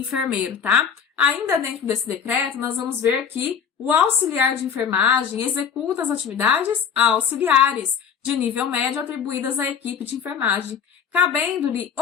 tá? Ainda dentro desse decreto, nós vamos ver que o auxiliar de enfermagem executa as atividades auxiliares de nível médio atribuídas à equipe de enfermagem, cabendo-lhe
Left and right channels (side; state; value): right; quieter; 7.3 dB